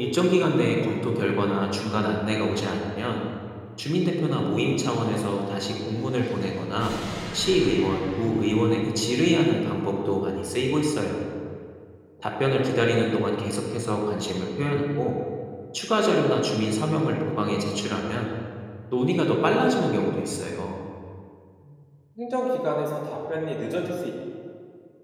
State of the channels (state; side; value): identical; both; correlation 1.00